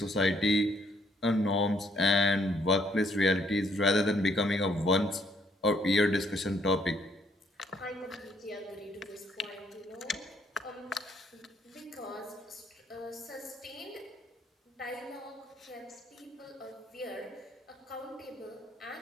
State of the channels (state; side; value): normal; both; correlation 0.68